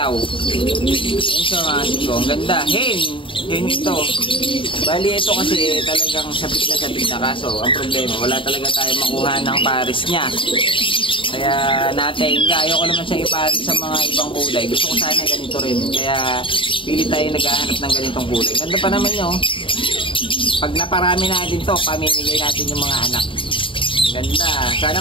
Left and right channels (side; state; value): right; late; 0.25 ms